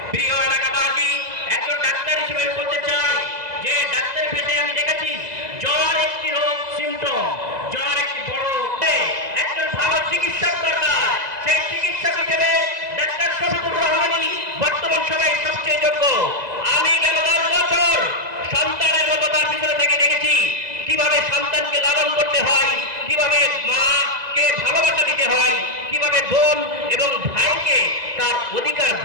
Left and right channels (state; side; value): late; left; 2.0 ms